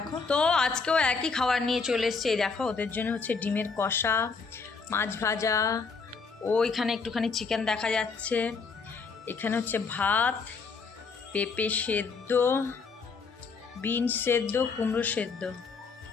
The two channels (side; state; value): right; quieter; 4.8 dB